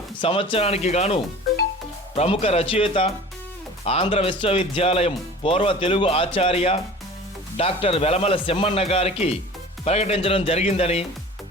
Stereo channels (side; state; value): both; normal; correlation 0.41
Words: సంవత్సరానికి గాను ప్రముఖ రచయిత, ఆంధ్ర విశ్వవిద్యాలయం పూర్వ తెలుగు ఆచార్య డాక్టర్ వెలమల సెమ్మన్న గారికి ప్రకటించడం జరిగిందని